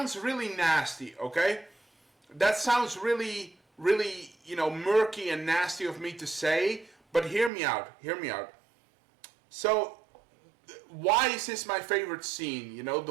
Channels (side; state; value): left; drops out; at 7.5 s